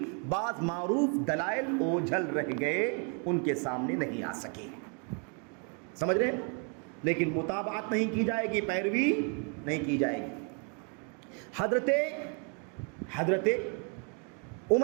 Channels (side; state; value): left; quieter; 38.7 dB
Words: بعض معروف دلائل اوجھل رہ گئے، ان کے سامنے نہیں آ سکے. سمجھ رہے ہیں؟ لیکن متابعت نہیں کی جائے گی، پیروی نہیں کی جائے گی. حضرت